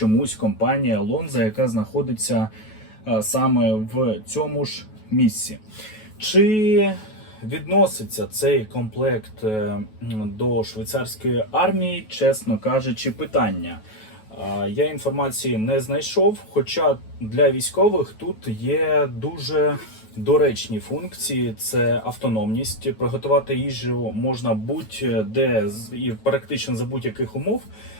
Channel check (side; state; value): right; late; 9.3 ms